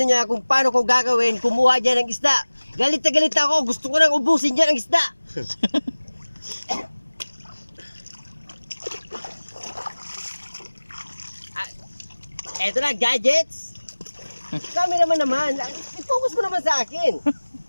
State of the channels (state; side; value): inverted; both; correlation -1.00